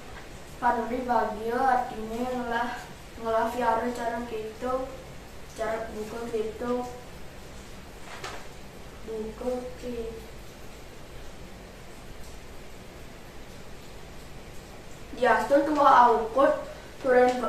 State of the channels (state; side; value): identical; both; correlation 1.00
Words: Pan Meri bagio artine ngelah fiara cara gitu, cara buka gitu. Diastu tua aukut turen